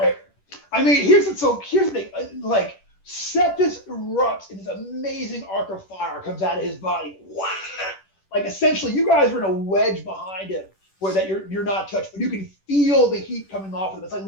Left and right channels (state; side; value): late; right; 10 ms